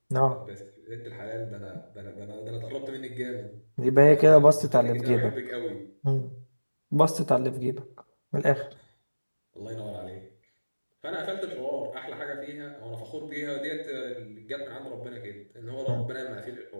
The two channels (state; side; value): inverted; both; correlation -1.00